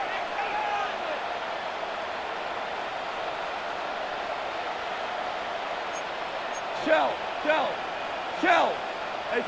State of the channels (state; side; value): identical; both; correlation 1.00